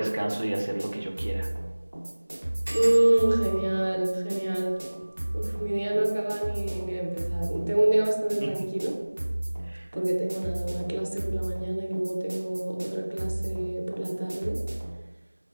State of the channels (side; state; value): both; inverted; correlation -1.00